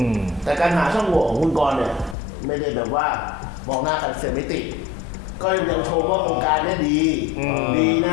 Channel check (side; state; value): right; drops out; at 2.1 s